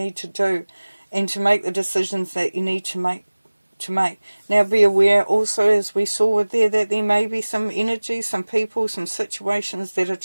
to do and to make the decisions that you need to make. Now be aware also, as we saw there, that there may be some energy, some people, some situations that are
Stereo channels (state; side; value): inverted; both; correlation -1.00